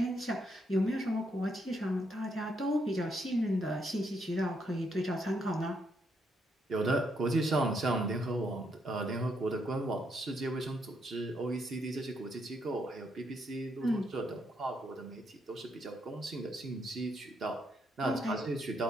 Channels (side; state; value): both; normal; correlation 0.76